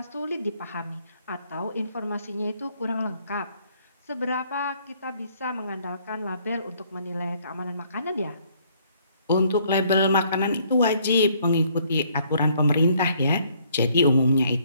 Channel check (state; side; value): inverted; both; correlation -0.65